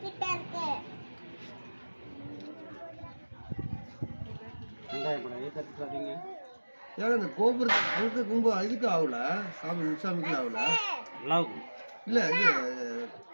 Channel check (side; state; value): both; inverted; correlation -1.00